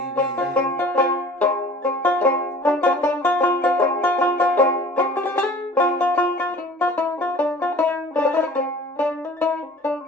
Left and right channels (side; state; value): both; normal; correlation 0.46